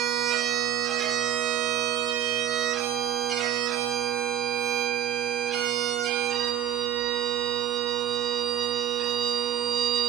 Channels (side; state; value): left; quieter; 10.5 dB